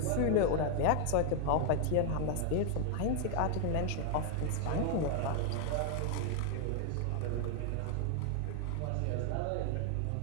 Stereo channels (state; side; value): different; both; correlation 0.00